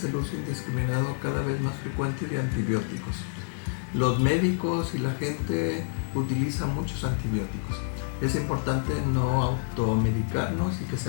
el uso indiscriminado, cada vez más frecuente, de antibióticos. Los médicos y la gente utilizan muchos antibióticos. Es importante no automedicarnos y que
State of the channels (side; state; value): right; silent; digital silence